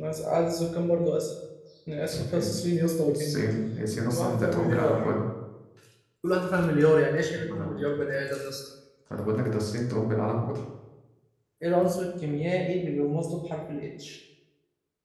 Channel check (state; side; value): identical; both; correlation 1.00